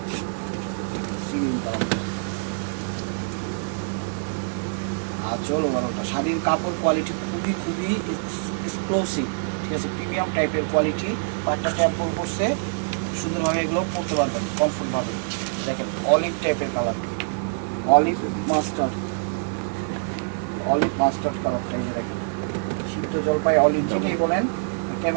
sea green colour আঁচল ওভারঅলটা। শাড়ির কাপড় কোয়ালিটি খুবই এক্সক্লুসিভ, ঠিক আছে, প্রিমিয়াম টাইপের কোয়ালিটি। পাটটা ট্যাম্পল করছে সুন্দরভাবে, এগুলো পরতে পারবেন কমফোর্টভাবে। দেখেন অলিভ টাইপের colour, olive mustard, olive mustard কালারটা। এই যে দেখেন সিদ্ধ জলপাই অলিভ, যেটাই বলেন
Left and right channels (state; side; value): silent; left; 60 dB below the other